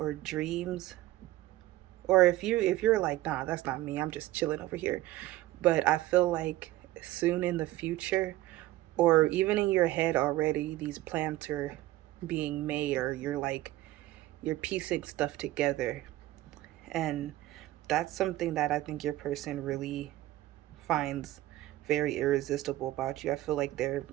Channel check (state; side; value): quieter; left; 16.1 dB